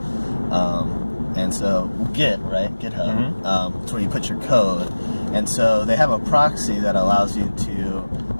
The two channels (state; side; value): inverted; both; correlation -1.00